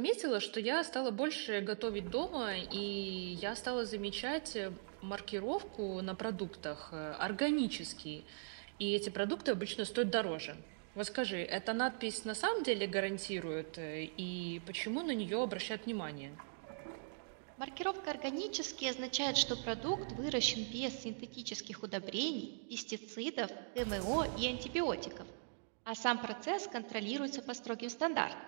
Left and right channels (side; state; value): left; silent; digital silence